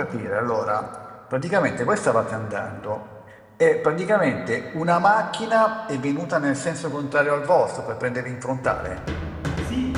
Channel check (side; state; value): both; identical; correlation 1.00